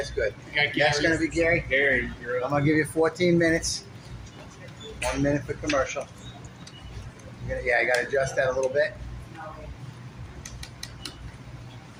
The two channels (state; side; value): identical; both; correlation 1.00